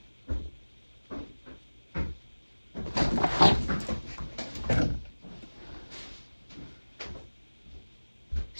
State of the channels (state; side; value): inverted; both; correlation -1.00